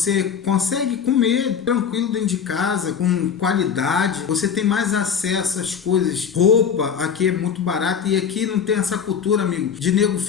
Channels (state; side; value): quieter; right; 7.2 dB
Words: consegue comer tranquilo dentro de casa, com qualidade, você tem mais acesso às coisas. Roupa aqui é muito barata e aqui não tem essa cultura, amigo, de nego